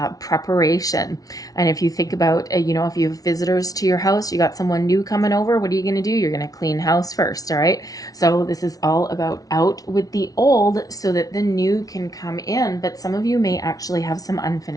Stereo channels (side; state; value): right; late; 0.18 ms